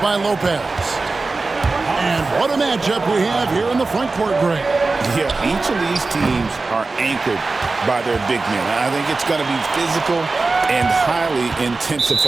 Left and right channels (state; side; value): quieter; left; 3.7 dB